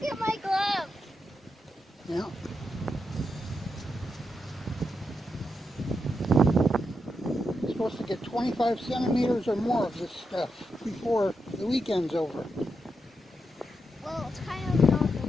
at my glove. Yeah. You're supposed to get 25 centimeters or more of this stuff before the weekend's over. Well, it's kind of not the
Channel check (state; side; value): normal; both; correlation 0.85